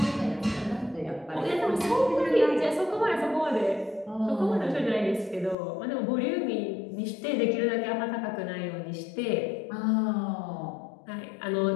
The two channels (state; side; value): drops out; right; at 5.6 s